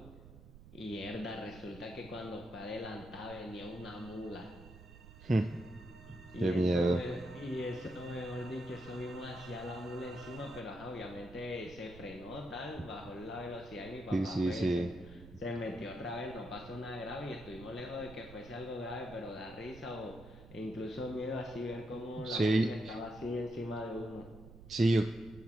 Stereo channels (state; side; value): noise; right; rumble, 17 dB below the sound